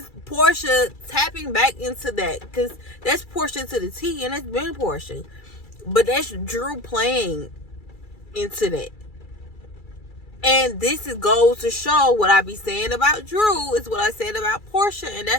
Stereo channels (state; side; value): late; right; 2.3 ms